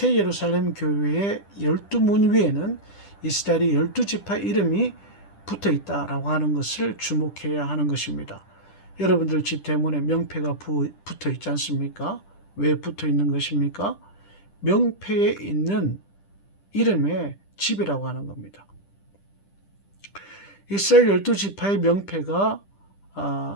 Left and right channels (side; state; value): right; late; 10 ms